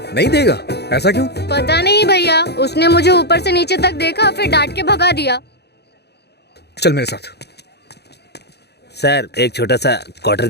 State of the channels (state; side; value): late; right; 0.48 ms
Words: नहीं देगा? ऐसा क्यों? पता नहीं भैया, उसने मुझे ऊपर से नीचे तक देखा, फिर डांट के भगा दिया। चल मेरे साथ। सर एक छोटा सा क्वार्टर